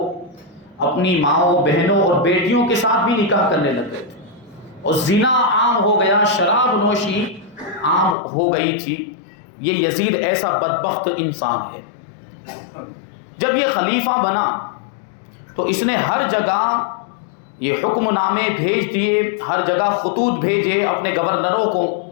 اپنی ماؤں، بہنوں اور بیٹیوں کے ساتھ بھی نکاح کرنے لگ گئے تھے، اور زنا عام ہو گیا، شراب نوشی عام ہو گئی تھی۔ یہ یزید ایسا بدبخت انسان ہے۔ جب یہ خلیفہ بنا تو اس نے ہر جگہ یہ حکم نامے بھیج دیے، ہر جگہ خطوط بھیجے اپنے گورنروں کو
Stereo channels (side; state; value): right; drops out; at 8.2 s